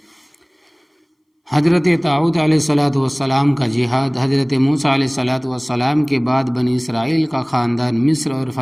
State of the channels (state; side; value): identical; both; correlation 1.00